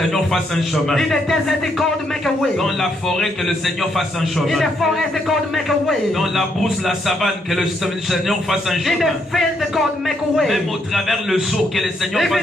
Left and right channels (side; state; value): both; normal; correlation 0.75